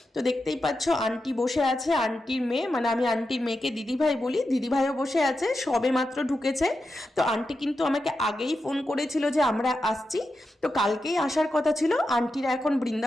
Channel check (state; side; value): normal; both; correlation 0.89